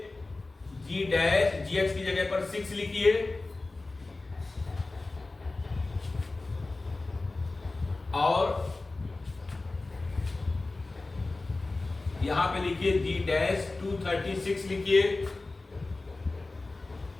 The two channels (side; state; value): right; quieter; 3.3 dB